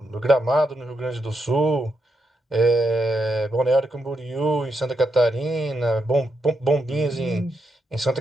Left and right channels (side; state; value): both; normal; correlation 0.83